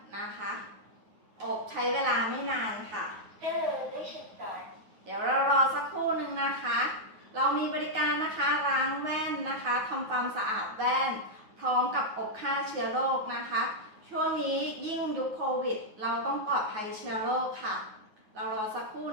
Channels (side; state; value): left; late; 9.4 ms